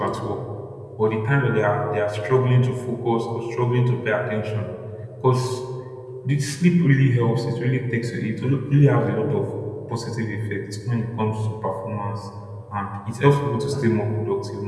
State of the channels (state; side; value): identical; both; correlation 1.00